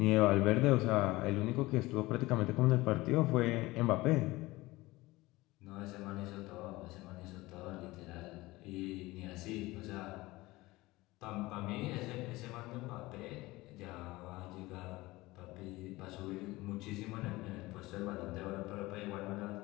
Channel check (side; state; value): right; quieter; 20.1 dB